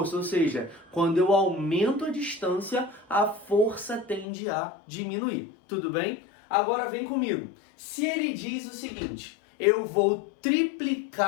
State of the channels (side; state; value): right; drops out; at 4.2 s